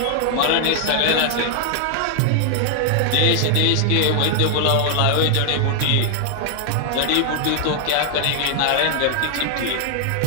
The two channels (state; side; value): different; both; correlation 0.00